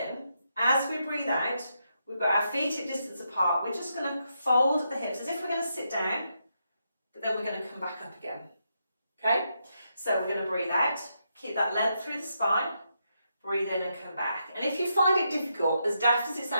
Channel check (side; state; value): both; inverted; correlation -0.82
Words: As we breathe out, we've got our feet at distance apart. We're just going to fold the hips as if we're going to sit down, but then we're going to come back up again. Okay? So we're going to breathe out, keep that length through the spine. Breathe in and come back. And if you find it difficult, as daft as it